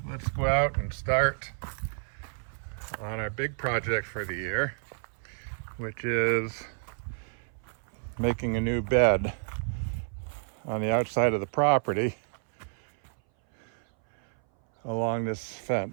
let's go out and start on our big project for the year, which is making a new bed on the outside of the property along this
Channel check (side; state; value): left; silent; 58 dB below the other